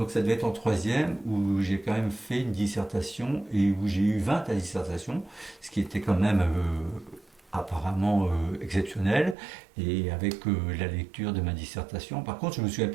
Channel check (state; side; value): drops out; left; at 9.3 s